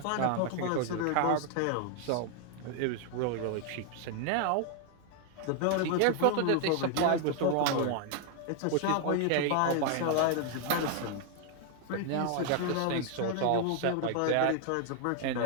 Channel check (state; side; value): different; both; correlation 0.00